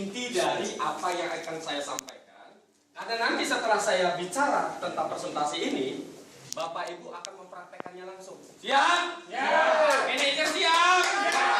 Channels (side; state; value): both; identical; correlation 1.00